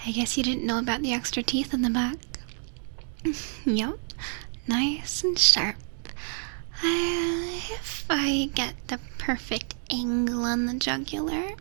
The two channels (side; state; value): left; silent; 59 dB below the other